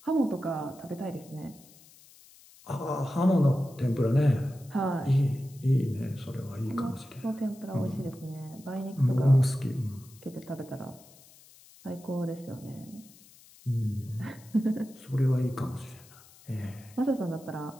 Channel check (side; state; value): left; noise; hiss, 24 dB below the sound